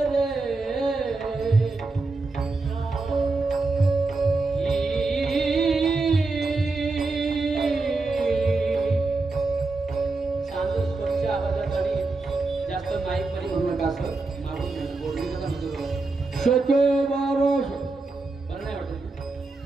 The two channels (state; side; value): quieter; left; 3.6 dB